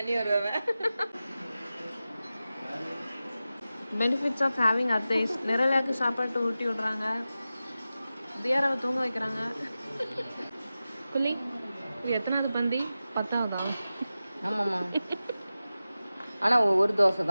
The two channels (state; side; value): inverted; both; correlation -0.94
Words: வருவேன் பெனிஃபிட்ஸ் ஆஃப் ஹேவிங் அத்தைஸ் நிரலாக்கு சாப்பாட்டு ஊட்டி விடுறாங்க தியாராவை தூங்க வைக்கிறாங்க புள்ளி இது எத்தனாவது பந்தி 10ஆவதா ஆமாம்மா ஆனா ஒரு தோசை